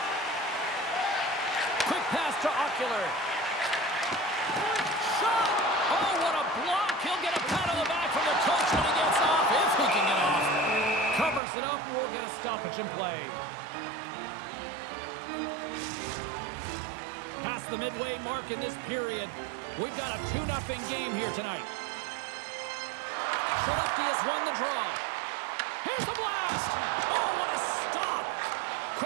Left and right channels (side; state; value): left; drops out; at 11.4 s